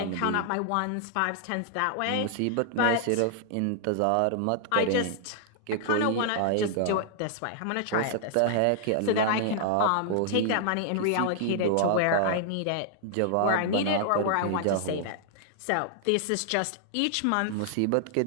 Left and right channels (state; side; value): different; both; correlation -0.01